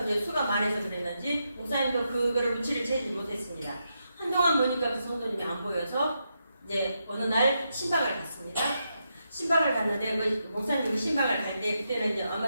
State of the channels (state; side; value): inverted; both; correlation -0.84